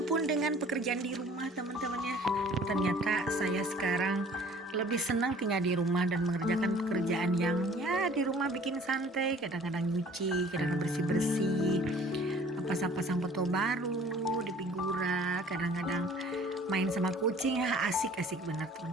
dengan pekerjaan di rumah teman-teman ya. Ternyata saya sekarang lebih senang tinggal di rumah dan mengerjakan pekerjaan yang ya di rumah bikin santai, kadang-kadang nyuci, kadang-kadang bersih-bersih, pasang-pasang foto baru di figura, kadang-kadang main sama kucing, ya asik-asik benar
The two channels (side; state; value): both; normal; correlation 0.52